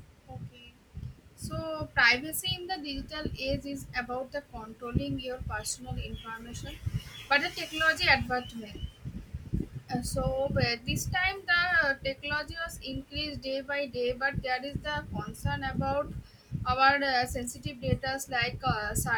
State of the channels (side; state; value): both; identical; correlation 1.00